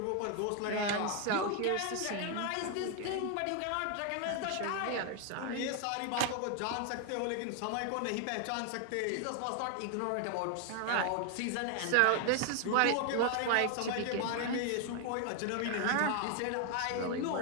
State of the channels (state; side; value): different; both; correlation 0.00